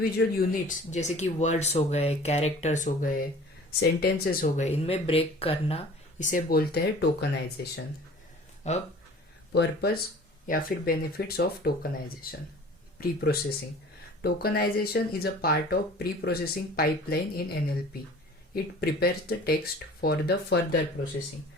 units जैसे कि words हो गए, कैरेक्टर्स हो गए, सेंटेंसेस हो गए, इनमें ब्रेक करना, इसे बोलते हैं टोकनाइजेशन। अब पर्पस या फिर benefits of tokenisation. Pre processing. Tokenization is a part of pre-processing pipeline in NLP. It prepares the text for the further processing.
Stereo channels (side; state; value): both; normal; correlation 0.46